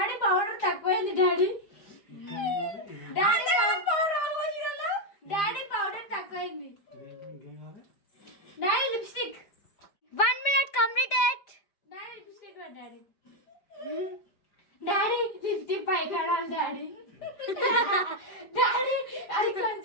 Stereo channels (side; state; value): right; late; 5.0 ms